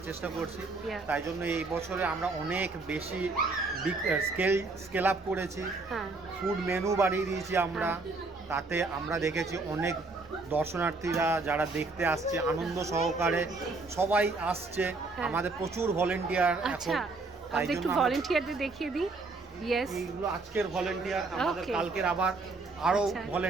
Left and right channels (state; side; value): quieter; left; 3.6 dB